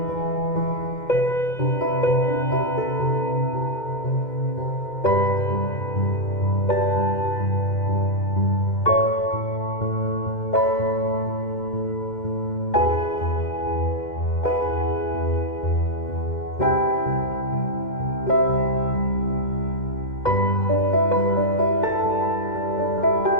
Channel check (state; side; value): late; right; 2.1 ms